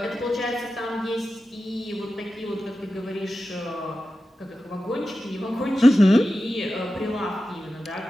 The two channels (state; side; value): normal; both; correlation 0.93